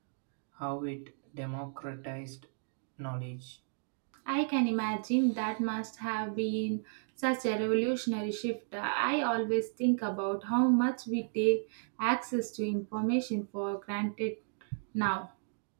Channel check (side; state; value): left; silent; digital silence